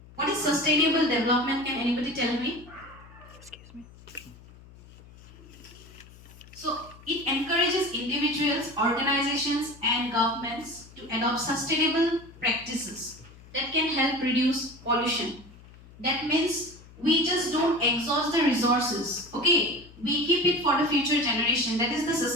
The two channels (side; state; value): left; noise; hum, 21 dB below the sound